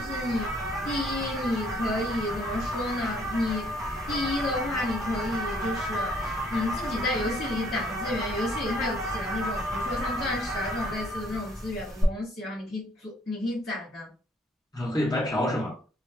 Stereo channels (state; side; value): normal; both; correlation 0.63